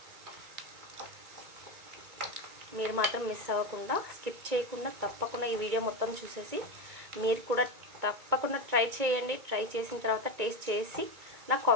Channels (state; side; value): late; left; 2.2 ms